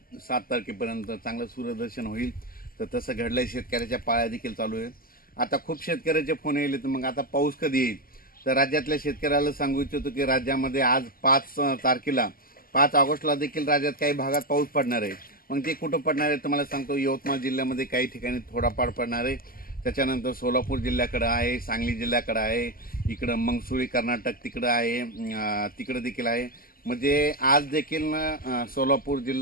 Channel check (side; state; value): right; late; 0.42 ms